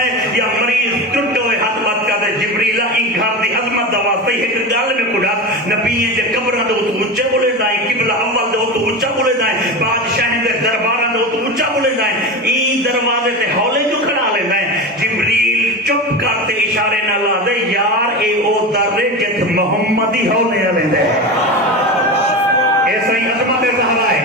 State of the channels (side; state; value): both; normal; correlation 0.24